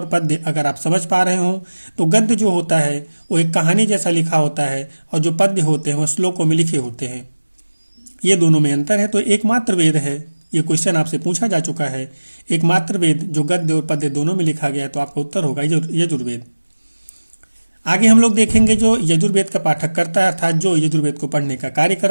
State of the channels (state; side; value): inverted; both; correlation -1.00